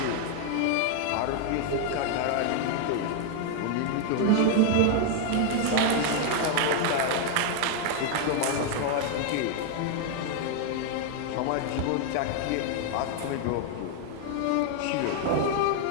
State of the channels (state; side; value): different; both; correlation 0.00